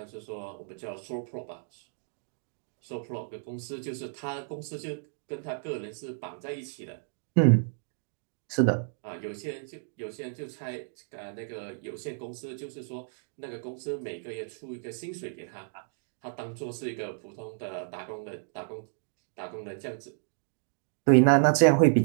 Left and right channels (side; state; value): left; silent; digital silence